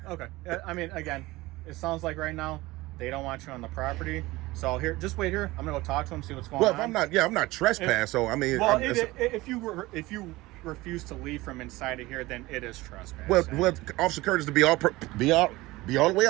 okay, I mean, again, it sounds like right now they don't want you on the property. So here, just wait here. I'm gonna go talk to them, see what's going on. Well, if I'm not trespassed. So I mean, well, if you refuse to leave from inside of here, then it is trespass. Well, Officer Curtis, to be all the way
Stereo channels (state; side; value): quieter; left; 19.8 dB